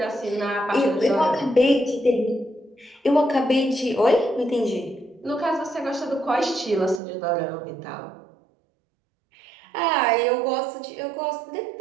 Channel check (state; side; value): drops out; left; at 7.0 s